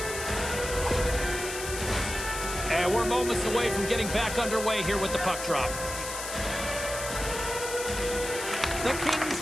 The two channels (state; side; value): noise; left; hiss, 7 dB below the sound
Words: And we're moments away from getting back underway here with the puck drop. The Kings